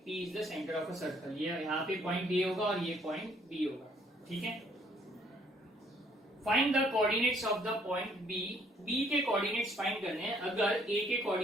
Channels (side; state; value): both; normal; correlation 0.64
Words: P is the centre of a circle. ये यहाँ पे पॉइंट A होगा और ये पॉइंट B होगा। ठीक है, find the coordinates of the point B। B के कोऑर्डिनेट्स फाइंड करने हैं। अगर A के